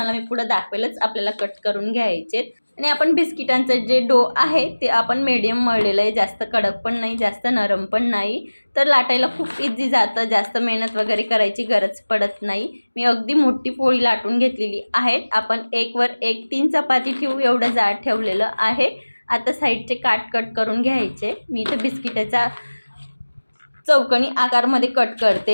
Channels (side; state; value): both; inverted; correlation -1.00